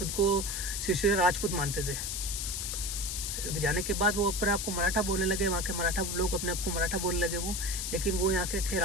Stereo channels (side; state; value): left; noise; hiss, 3 dB below the sound